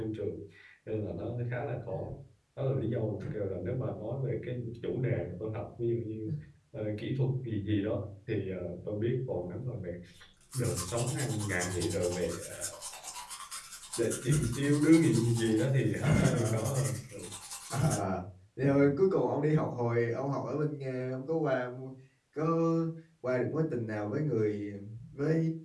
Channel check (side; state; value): both; identical; correlation 1.00